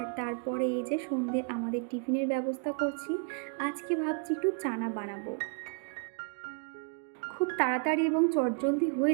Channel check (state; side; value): quieter; left; 37.3 dB